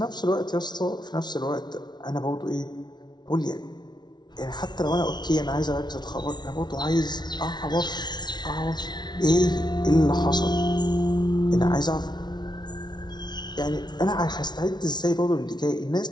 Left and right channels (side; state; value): right; late; 0.20 ms